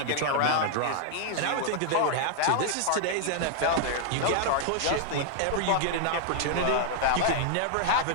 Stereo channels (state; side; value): different; both; correlation 0.00